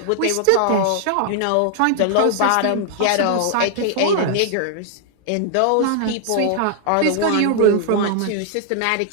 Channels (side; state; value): both; different; correlation 0.00